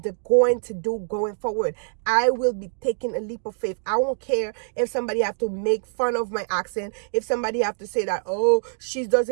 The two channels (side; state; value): left; silent; digital silence